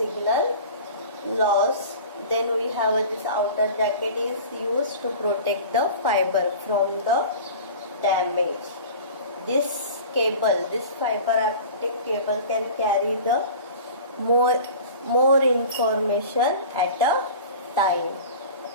loss. Then we have this outer jacket is used to protect the fiber from the damage. This cable, this fiber optic cable can carry the more information at a time.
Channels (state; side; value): inverted; both; correlation -0.38